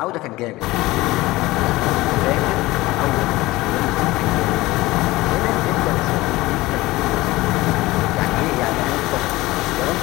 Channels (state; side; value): quieter; right; 19.2 dB